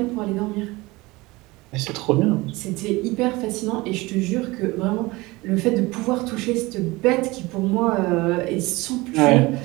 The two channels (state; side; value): quieter; left; 21.9 dB